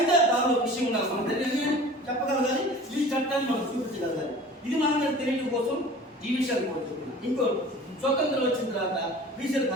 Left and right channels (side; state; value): both; normal; correlation 0.42